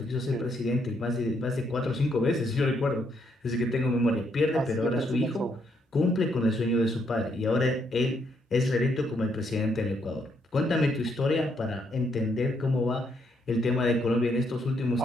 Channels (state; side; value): normal; both; correlation 0.74